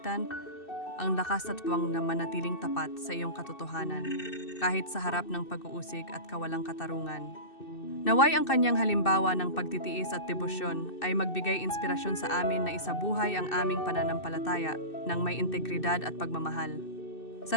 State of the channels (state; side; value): late; right; 2.6 ms